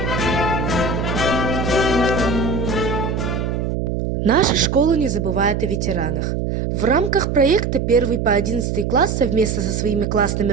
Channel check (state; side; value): noise; right; hum, 1 dB below the sound